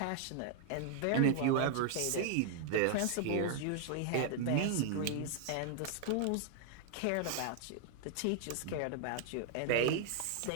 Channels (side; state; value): both; different; correlation 0.00